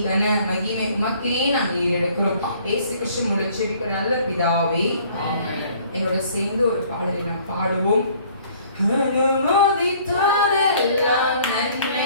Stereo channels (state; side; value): inverted; both; correlation -0.57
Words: கன மகிமை உமக்கே நாங்கள் ஈரெடுக்கிறோம். இயேசு கிறிஸ்து மூலம் செபிக்கிற நல்ல பிதாவே ஆமென். எங்களோட சேர்ந்து ஒரு பாடலை நாம் பாடுவோம். அனுமதித்ததெல்லாம்